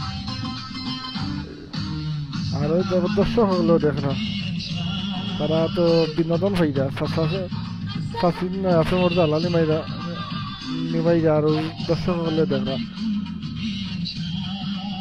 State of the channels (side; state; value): both; identical; correlation 1.00